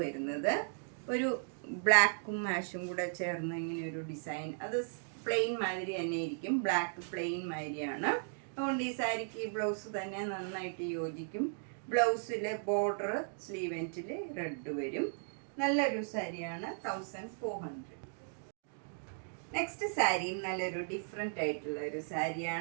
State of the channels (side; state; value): left; silent; digital silence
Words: വരുന്നത് ഒരു ബ്ലാക്കും മാഷും കൂടെ ചേർന്ന് ഇങ്ങനെ ഒരു ഡിസൈൻ. അത് പ്ലെയിൻ മാതിരി തന്നെ ഇരിക്കും. ബ്ലാക്ക് പ്ലെയിൻ മാതിരിയാണ്. അതുകൊണ്ട് ഈ സാരിക്ക് ഈ ബ്ലൗസ് തന്നെ നന്നായിട്ട് യോജിക്കും. ബ്ലൗസിൽ ബോർഡർ സ്ലീവ് എൻഡിൽ റെഡ് വരും. നല്ലൊരു സാരിയാണ്. 1400. നെക്സ്റ്റ് സാരിയും നല്ലൊരു ഡിഫറെൻ്റ് ആയിട്ടുള്ള ഒരു